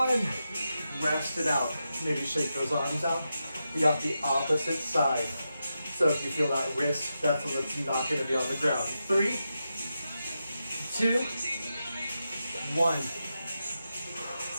Rest it out. Maybe shake those arms out. You got the opposite side. So if you feel that wrist, that's when it's not going to be on the ground. 3, 2, 1.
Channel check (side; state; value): both; inverted; correlation -0.88